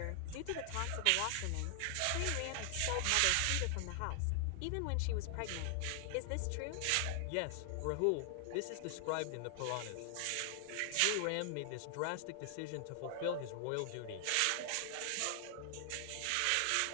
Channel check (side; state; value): both; different; correlation 0.00